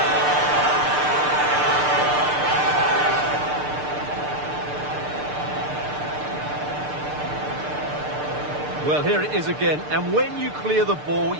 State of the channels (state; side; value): late; left; 6.7 ms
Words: Well, here it is again, and when you clear the ball,